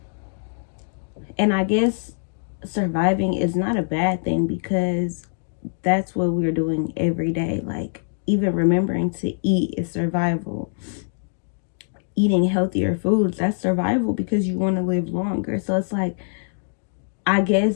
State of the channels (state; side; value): silent; right; digital silence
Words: And I guess surviving is not a bad thing, because that's what we're doing every day. Like, even remembering to eat is survival. Eating healthier foods, that's survival, because you want to live longer. So it's like, I